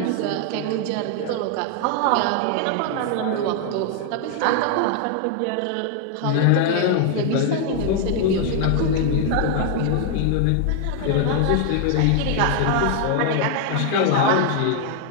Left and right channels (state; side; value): different; both; correlation 0.00